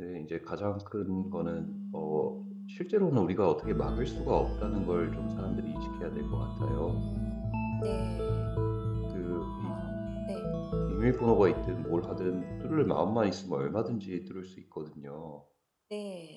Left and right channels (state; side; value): identical; both; correlation 1.00